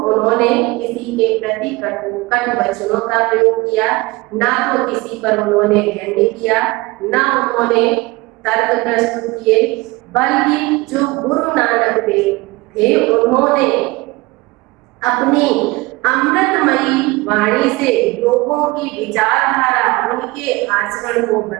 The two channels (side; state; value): left; quieter; 22.3 dB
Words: उन्होंने किसी के प्रति कटु वचनों का प्रयोग किया, ना तो किसी पर उन्होंने व्यंग्य किया, ना उन्होंने तर्क प्रस्तुत किए, बल्कि जो गुरु नानक देव थे उन्होंने अपनी अमृतमयी वाणी से लोगों की विचारधारा, उनके आचरण को